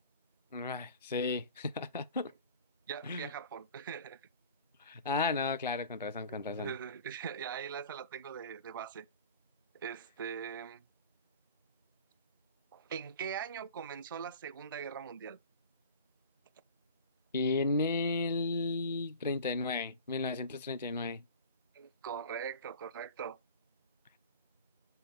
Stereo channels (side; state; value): both; inverted; correlation -0.39